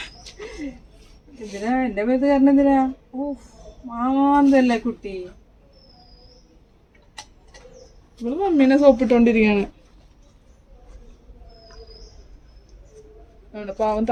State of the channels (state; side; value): identical; both; correlation 1.00